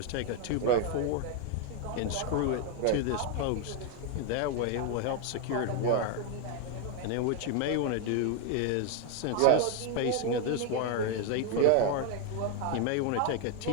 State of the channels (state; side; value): different; both; correlation 0.01